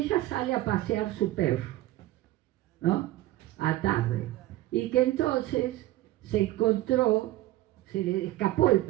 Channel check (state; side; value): quieter; left; 16.1 dB